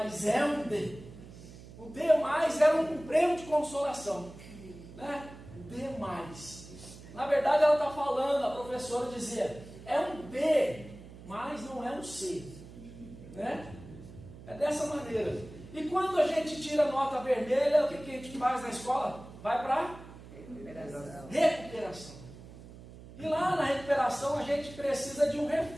é um D. O D+ era um prêmio de consolação, né? O D+. Na verdade ela está falando, a professora dizia, é um B, mas não é um C, né? É dessa maneira. E quando a gente tira nota vermelha, o que a gente faz na escola? Vai para recuperação. E lá na recuperação a gente precisa de um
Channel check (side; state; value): right; noise; hum, 17 dB below the sound